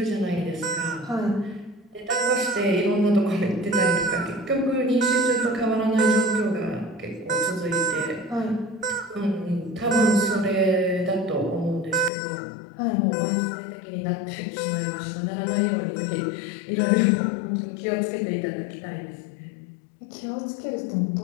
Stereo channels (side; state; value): right; drops out; at 12.1 s